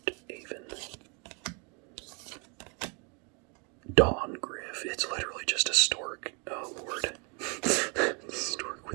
Aven. Dawn-Griff. It's literally just a stork. Oh, Lord. Stork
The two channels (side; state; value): left; quieter; 34.0 dB